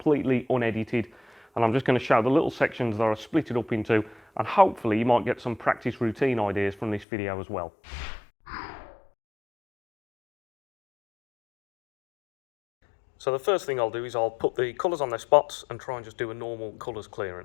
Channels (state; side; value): drops out; right; at 7.1 s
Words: unedited, and I'm just going to show the little sections that I split it up into, and hopefully you might get some practice routine ideas from this video as well. So the first thing I'll do is I'll put the colours on their spots and try and just do a normal colours